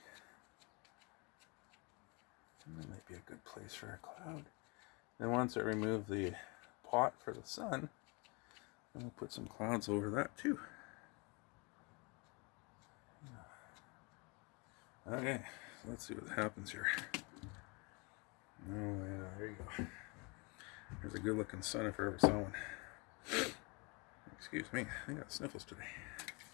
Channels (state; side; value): quieter; right; 30.1 dB